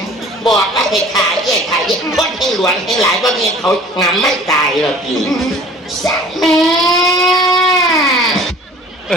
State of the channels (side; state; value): both; normal; correlation 0.47